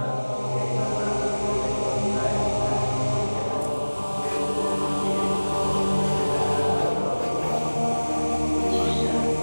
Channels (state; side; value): inverted; both; correlation -1.00